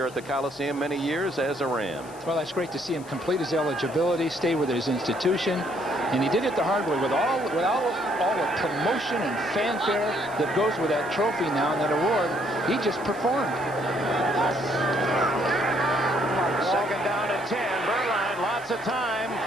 at the Coliseum many years as a Ram. Well, that's great to see him complete his eligibility, stay with his institution, and he did it the hard way with all the promotion and fanfare that goes with that trophy now and that award. He just performed. Second down and 10. Berline, lots of time,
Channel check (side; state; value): left; noise; hiss, 22 dB below the sound